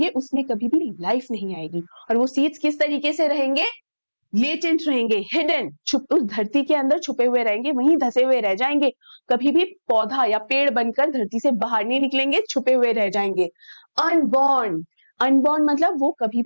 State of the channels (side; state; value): both; inverted; correlation -1.00